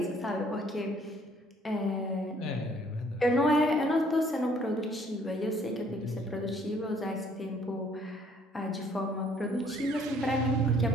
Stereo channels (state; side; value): normal; both; correlation 0.61